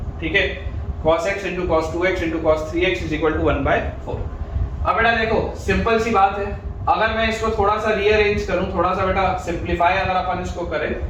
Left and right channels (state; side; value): identical; both; correlation 1.00